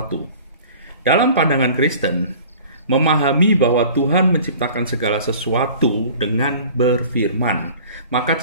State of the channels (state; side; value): inverted; both; correlation -0.45